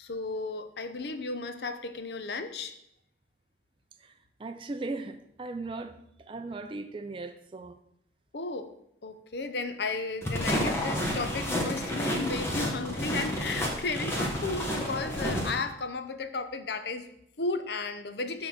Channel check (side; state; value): both; normal; correlation 0.27